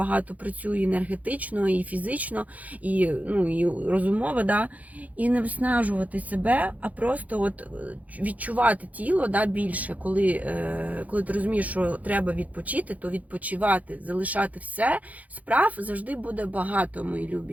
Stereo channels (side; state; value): left; late; 0.075 ms